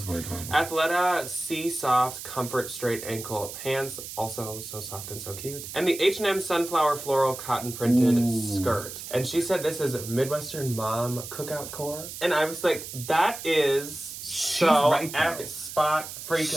weird. Athleta Sea Soft Comfort Straight Ankle Pants, also so soft and so cute. And the H&M Sunflower Floral Cotton Printed Skirt. And she said this is Midwestern Mom Cookout Core. And I was like, that is so right, spot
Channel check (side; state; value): right; noise; hiss, 10 dB below the sound